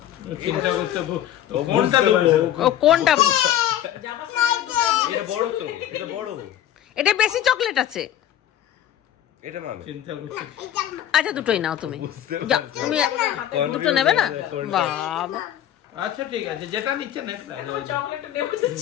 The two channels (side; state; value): right; quieter; 11.6 dB